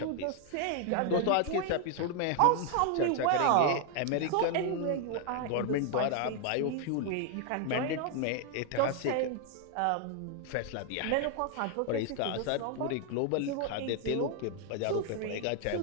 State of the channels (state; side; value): different; both; correlation 0.00